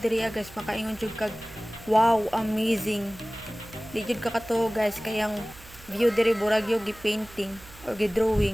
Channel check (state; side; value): noise; right; hum, 21 dB below the sound